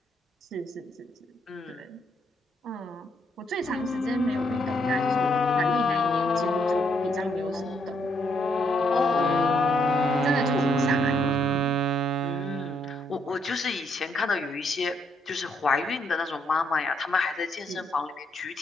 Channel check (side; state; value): both; normal; correlation 0.74